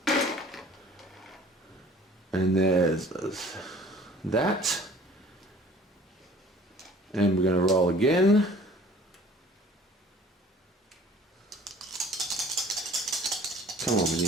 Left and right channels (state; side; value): normal; both; correlation 0.50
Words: And there's that. And we're going to roll again. Come on, we